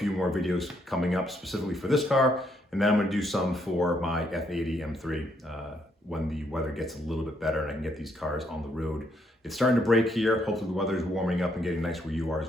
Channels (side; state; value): both; normal; correlation 0.73